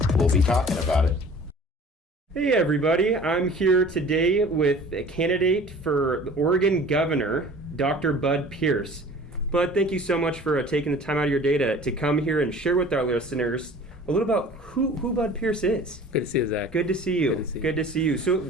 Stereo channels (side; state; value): both; normal; correlation 0.46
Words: we'll be talking about it. Hey everybody, I'm here today with a candidate for the Oregon Governor, Dr. Bud Pierce. Bud, thank you so much for taking the time out of your day to come here and share with our listeners a little about who Bud Pierce is. Good to see you, Zach. Good to see you. Good to see you.